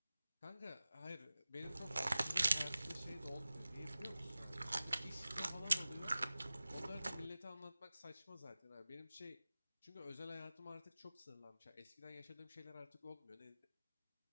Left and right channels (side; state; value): both; inverted; correlation -0.97